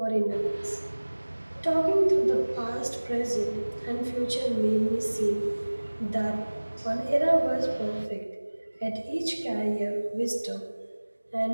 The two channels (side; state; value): both; inverted; correlation -1.00